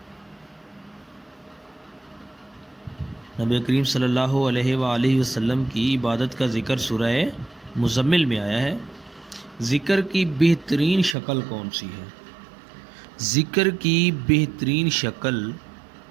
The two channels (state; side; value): drops out; left; at 11.2 s